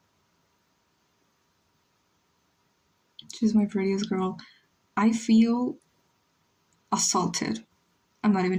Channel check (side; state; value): both; identical; correlation 1.00